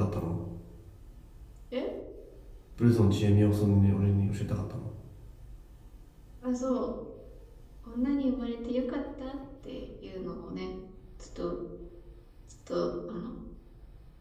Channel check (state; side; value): identical; both; correlation 1.00